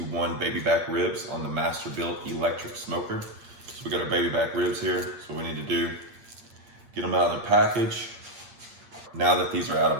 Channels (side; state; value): left; late; 8.6 ms